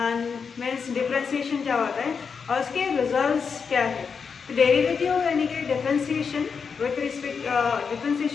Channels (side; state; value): right; quieter; 5.9 dB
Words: मीन्स डिफरेंशिएशन क्या होता है और उसके रिजल्ट्स क्या है। तो डेरिवेटिव यानी कि differentiation with respect